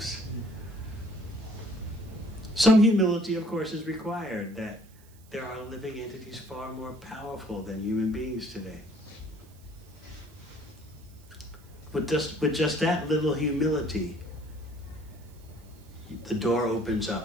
Some humility, of course, is required, that there are living entities far more powerful than human beings today. With just that little humility, the door opens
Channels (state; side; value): noise; right; hiss, 27 dB below the sound